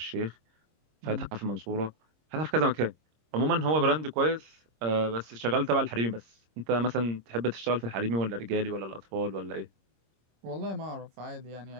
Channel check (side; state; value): left; late; 26 ms